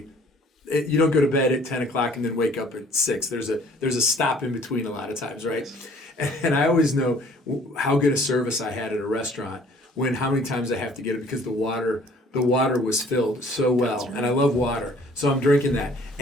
don't go to bed at 10 o'clock and then wake up at 6. There's a stop in between a lot of times, right? And I always know how good a service I had at a restaurant how many times I have to get it, because the water was filled so well. Right. And I love water. So I'm drinking that.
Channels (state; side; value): normal; both; correlation 0.56